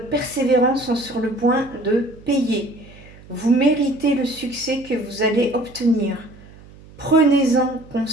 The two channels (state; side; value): noise; right; hum, 22 dB below the sound